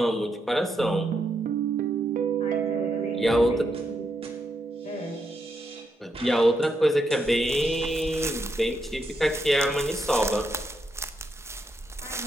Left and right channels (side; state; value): both; normal; correlation 0.80